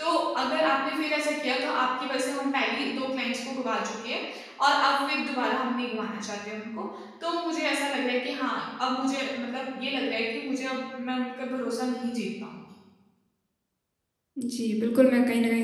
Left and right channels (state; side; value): identical; both; correlation 1.00